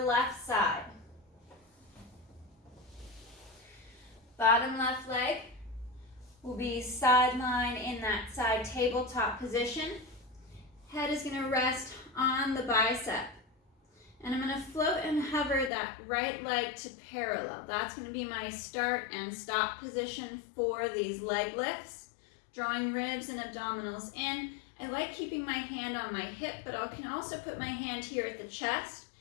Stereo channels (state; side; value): drops out; right; at 15.7 s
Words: left side. Bottom left leg will be sideline in that side tabletop position. Head is going to rest on the bicep. And I'm going to float and hover that right leg to parallel. That's going to be my start and stop position for these leg lifts. Drawing ribs and abdominals in. I like keeping my hand on my hip, but I can also put my hand here at the chest.